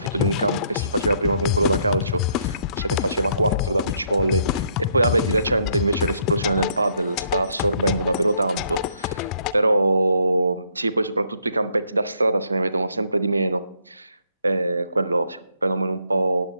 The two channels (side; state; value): both; inverted; correlation -0.68